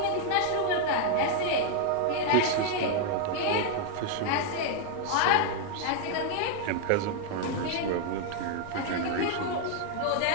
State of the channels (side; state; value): both; different; correlation 0.00